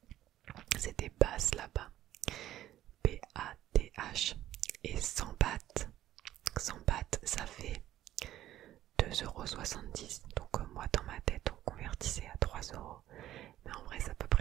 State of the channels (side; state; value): left; quieter; 13.3 dB